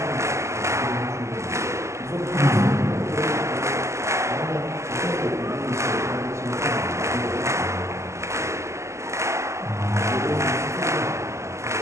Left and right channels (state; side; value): late; left; 0.13 ms